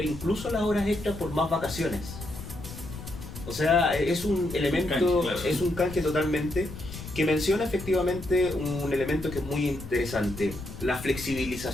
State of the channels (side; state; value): left; noise; rumble, 11 dB below the sound